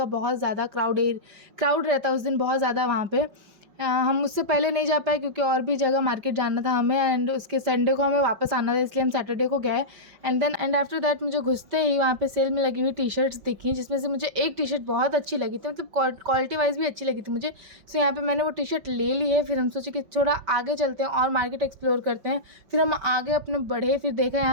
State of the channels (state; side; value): late; left; 5.4 ms